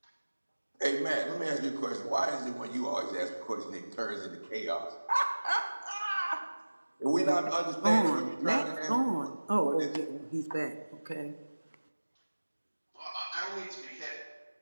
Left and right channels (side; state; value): both; inverted; correlation -1.00